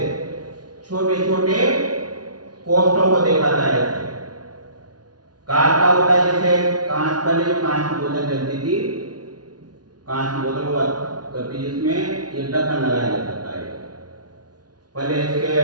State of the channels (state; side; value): late; left; 0.69 ms